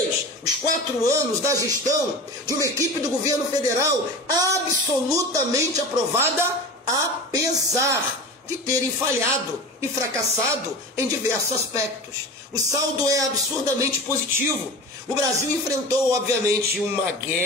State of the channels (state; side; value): normal; both; correlation 0.31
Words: os 4 anos da gestão de uma equipe do governo federal absolutamente aprovada, apesar de terem falhado e fracassado em diversos aspectos. O saldo é absurdamente positivo. O Brasil enfrentou, obviamente, uma